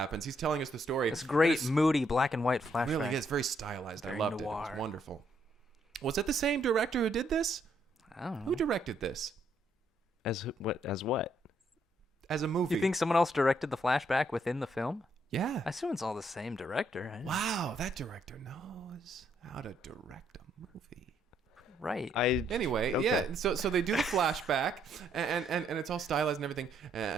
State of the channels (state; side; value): normal; both; correlation 0.72